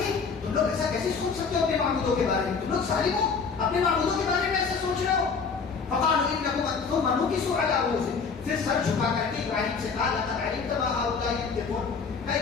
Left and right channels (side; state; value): right; quieter; 5.3 dB